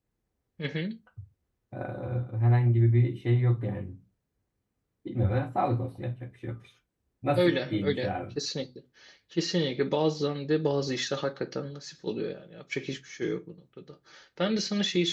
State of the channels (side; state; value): both; identical; correlation 1.00